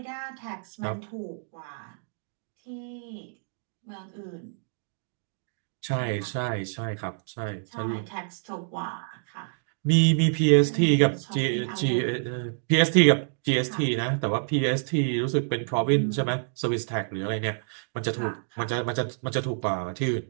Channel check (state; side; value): silent; left; digital silence